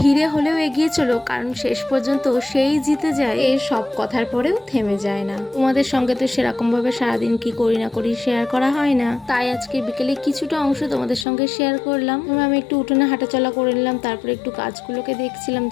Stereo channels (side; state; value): right; drops out; at 11.2 s